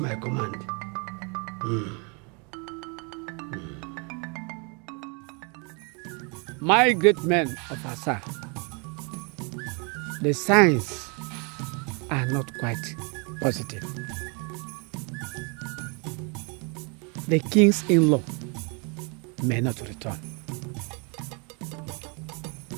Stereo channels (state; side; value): quieter; left; 33.8 dB